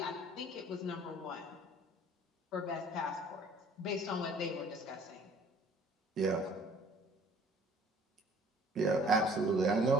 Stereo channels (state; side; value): normal; both; correlation 0.54